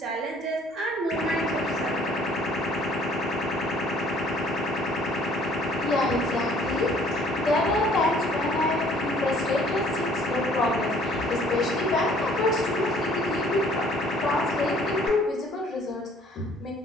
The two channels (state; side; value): normal; both; correlation 0.57